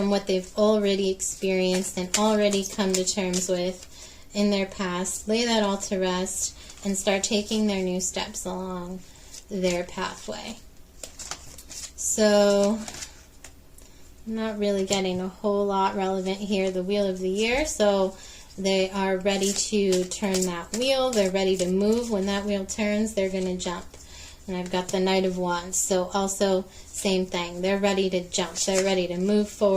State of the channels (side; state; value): both; identical; correlation 1.00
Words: what they've already experienced and already come to terms with in their past, lay that all to rest, and start taking their new steps along their pathway. So, I'm not really getting a whole lot relevant here, the Wheel of the Year, so they are ready to turn that wheel. They're ready to move. When that wheel turns, they're going to jump. And I've got the Knight of Wands, so also same thing. They're ready to jump. They're ready to move